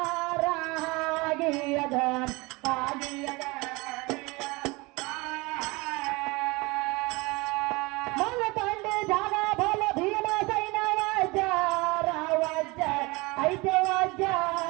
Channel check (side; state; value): left; quieter; 24.6 dB